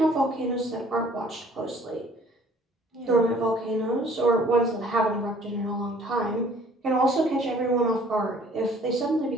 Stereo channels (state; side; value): normal; both; correlation 0.55